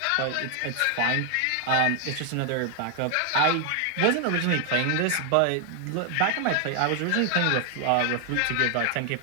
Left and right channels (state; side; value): different; both; correlation 0.00